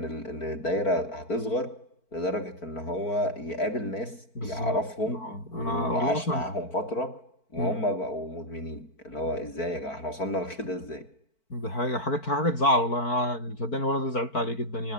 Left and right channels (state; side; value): late; right; 4.5 ms